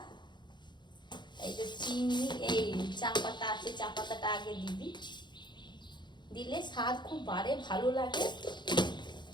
এই যে চিনি, এই চা পাতা আছে, চা পাতাটা আগে দিবি, দিলে স্বাদ খুব বাড়ে, ভালো লাগে।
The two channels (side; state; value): right; late; 0.22 ms